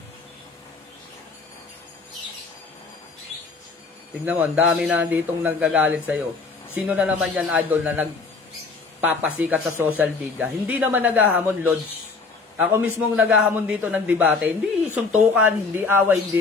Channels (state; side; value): quieter; right; 4.3 dB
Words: Tingnan mo, ang dami na ditong nagagalit sa'yo. Sino na naman yan, idol, na nagpapasikat sa social media? Hindi naman naghahamon, Lods. Ako mismong naghahamon dito ng debate. Hindi suntukan, hindi away,